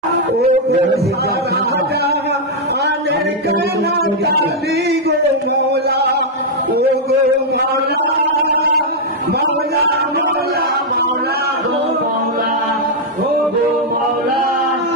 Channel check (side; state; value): both; normal; correlation -0.03